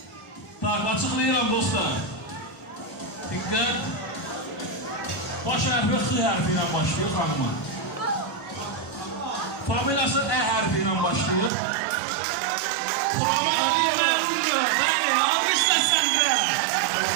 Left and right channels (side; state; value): left; drops out; at 11.5 s